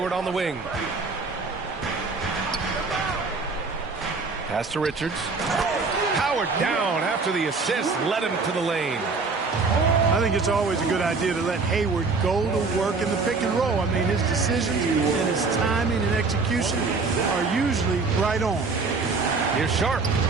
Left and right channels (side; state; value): left; quieter; 4.2 dB